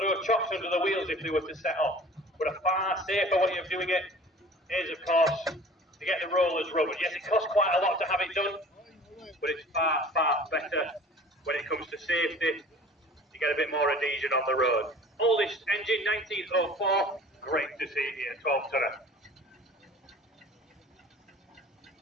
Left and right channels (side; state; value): both; normal; correlation 0.45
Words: chocks under the wheels if they were to set off. But a far safer way of doing it is, of course, to get the rollers rubbered. Yes, it costs quite a lot to have it done, but it's far, far better when it comes to safety. You get a bit more adhesion on the road. Oldest engine, 1904. Great to see it here, 12-tonner.